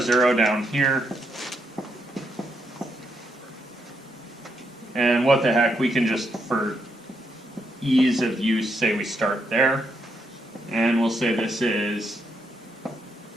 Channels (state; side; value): normal; both; correlation 0.78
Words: down here. And what the heck, we can just, for ease of use, say we start there. And we'll say this is